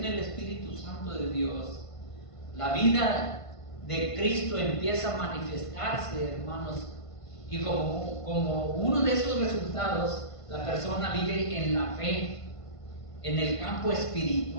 el Espíritu Santo de Dios, la vida de Cristo empieza a manifestarse, hermanos, y como uno de esos resultados, la persona vive en la fe, en el campo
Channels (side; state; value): right; late; 1.5 ms